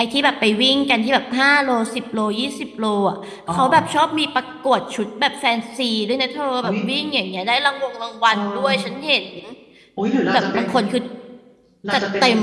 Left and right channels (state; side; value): identical; both; correlation 1.00